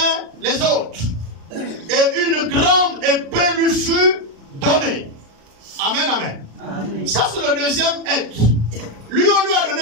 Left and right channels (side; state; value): left; late; 36 ms